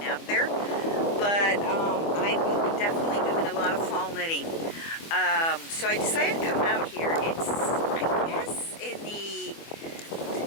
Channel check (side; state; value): right; late; 24 ms